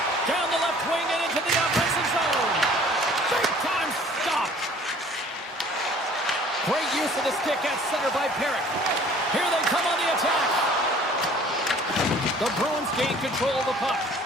Down the left wing and into the offensive zone. Big time stop. Great use of the stick at center by Perrick. Here they come on the attack. The Bruins gain control of the puck.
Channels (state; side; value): normal; both; correlation 0.52